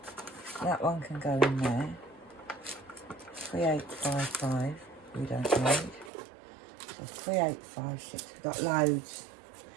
that one can go in there. 3855 we don't need. So 3856, we've got loads.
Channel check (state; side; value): drops out; left; at 6.1 s